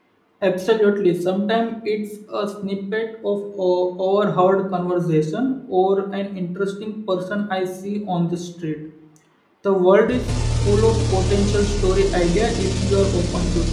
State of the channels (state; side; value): identical; both; correlation 1.00